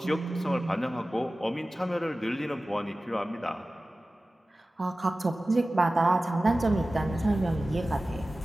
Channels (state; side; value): normal; both; correlation 0.96